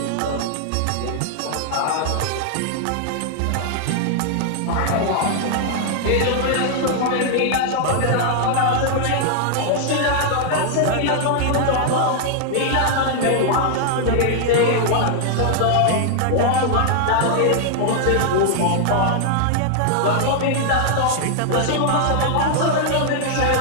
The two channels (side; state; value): both; different; correlation -0.01